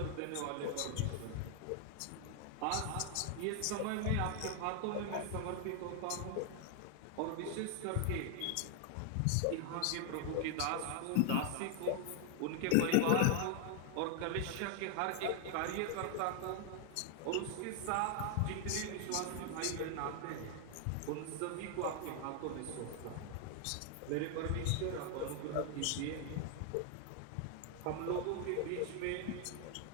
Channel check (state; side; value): different; both; correlation 0.00